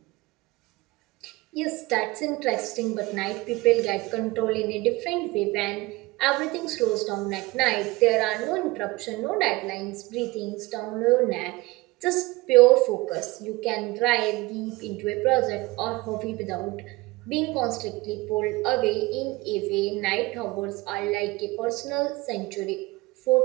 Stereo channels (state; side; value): quieter; left; 21.9 dB